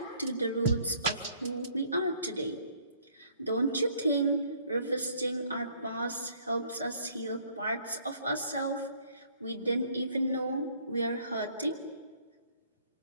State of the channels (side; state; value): both; inverted; correlation -0.61